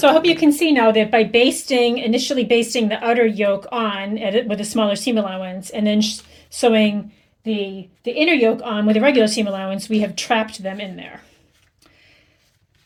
I hope you can see now that by initially basting the outer yoke on with a smaller seam allowance, and then sewing the inner yoke on with a regular seam allowance, we have trapped them in there.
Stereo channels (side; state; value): both; identical; correlation 1.00